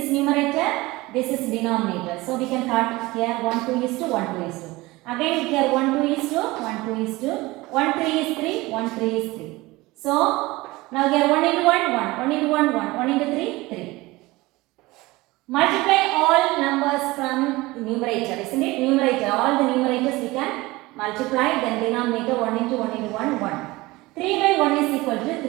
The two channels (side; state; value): left; quieter; 20.8 dB